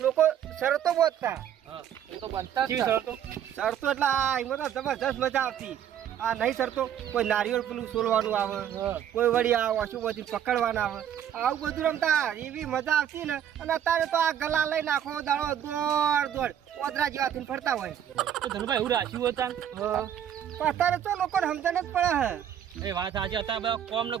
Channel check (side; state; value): left; quieter; 9.8 dB